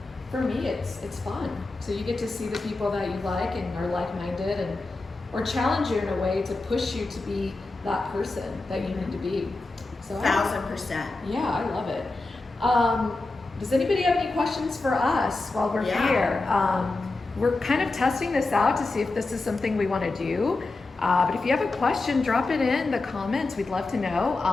For me, it's fun. So you get to see the people that you like and are like-minded, or challenge you in a way to push you to be that person that you need to be. So 1,000%. yeah, I love it. Does anybody have any questions for us while we're here? We're kind of testing this out to see if this is something we want to do. But if you have a question, drop it in the comments. We'd love to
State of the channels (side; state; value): right; quieter; 3.3 dB